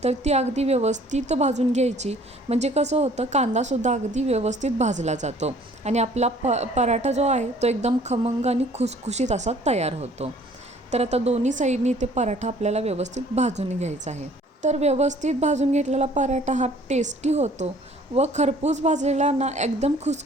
तर ती अगदी व्यवस्थित भाजून घ्यायची, म्हणजे कसं होतं कांदासुद्धा अगदी व्यवस्थित भाजला जातो आणि आपला पराठा जो आहे तो एकदम खमंग आणि खुसखुशीत असा तयार होतो। तर आता दोन्ही साईडनी ते पराठा आपल्याला व्यवस्थित भाजून घ्यायचा आहे। तर व्यवस्थित भाजून घेतलेला पराठा हा टेस्टी होतो व खरपूस भाजलेला ना एकदम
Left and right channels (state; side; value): normal; both; correlation 0.55